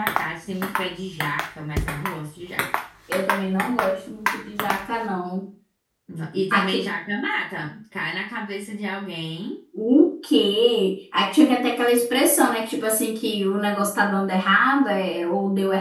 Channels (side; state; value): both; identical; correlation 1.00